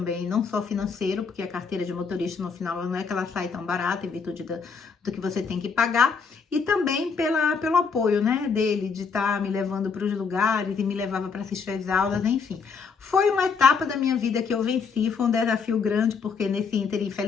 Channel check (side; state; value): right; quieter; 5.4 dB